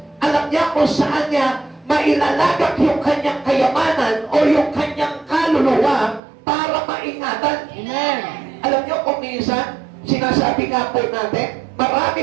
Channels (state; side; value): drops out; left; at 6.2 s